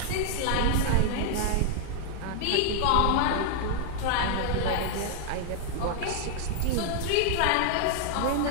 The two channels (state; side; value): different; both; correlation -0.01